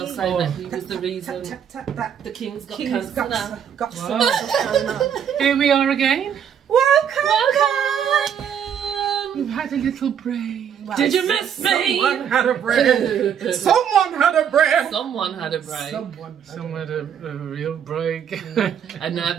say that he was the reason the King's got cancer now. Here we are again. Welcome! We've had a little break. Well, did you miss me? Someone had a break. Someone had a break. Someone had a break. Someone had a real break. A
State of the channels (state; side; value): quieter; left; 8.5 dB